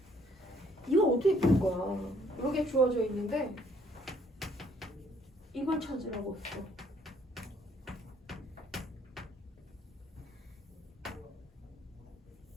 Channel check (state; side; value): normal; both; correlation 0.64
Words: 이거 어떻게 풀 거야? 이렇게 주어져 있는데 이걸 찾으라고 했어.